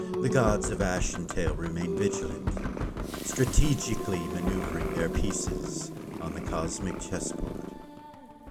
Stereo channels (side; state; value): both; identical; correlation 1.00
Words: the gods of Ashentale remain vigilant, strategically maneuvering their pieces on the cosmic chessboard.